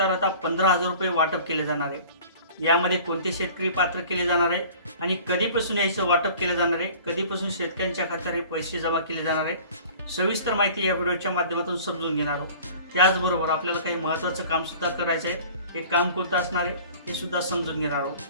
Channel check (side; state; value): both; inverted; correlation -0.46